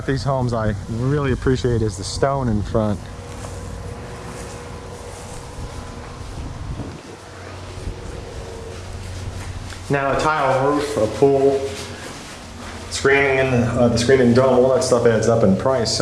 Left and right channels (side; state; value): both; identical; correlation 1.00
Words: these homes I really appreciate is the stone in front. Now a tile roof, a pool, screening in the screening dome, all that stuff adds up in price,